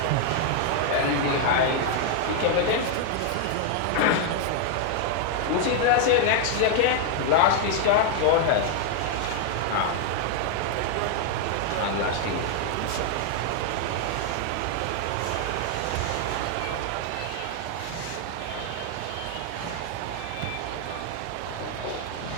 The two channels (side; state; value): both; different; correlation 0.00